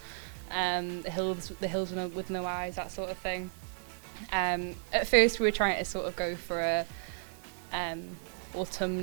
The Hills with No Eyes, that sort of thing. At first we were trying to sort of go for a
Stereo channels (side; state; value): left; silent; digital silence